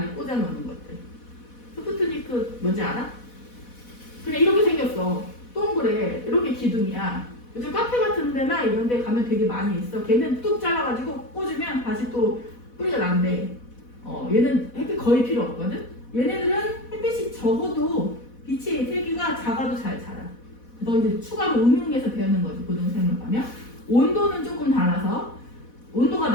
꽂아놓는 것들. 스푸트니크 뭔지 알아? 그냥 이렇게 생겼어. 동그래. 이렇게 기둥이야. 요즘 카페 같은 데나 이런 데 가면 되게 많이 있어. 걔는 뚝 잘라가지고 꽂으면 다시 또 뿌리가 난대. 얘는 햇빛 거의 필요 없거든? 얘네들은 햇빛이 적어도 빛의 세기가 작아도 잘 자라. 그래서 이제 추가로 응용해서 배우는 거지, 고등생물 가면. 온도는 조금 달라서, 온도가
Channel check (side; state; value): right; late; 4.1 ms